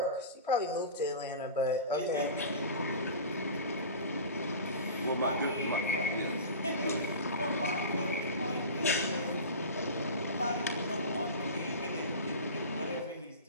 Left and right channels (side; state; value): both; inverted; correlation -0.33